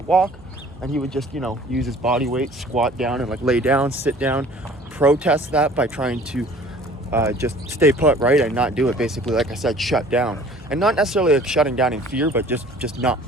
walk and he would just, use his body weight, squat down and like lay down, sit down, protest that by trying to just stay put, right, and not do it. Basically, like I said, shut down. And not necessarily like shutting down in fear, but just not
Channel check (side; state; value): both; normal; correlation 0.50